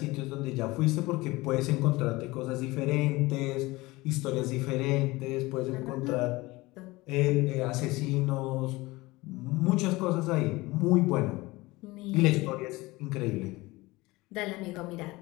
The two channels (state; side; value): quieter; right; 21.2 dB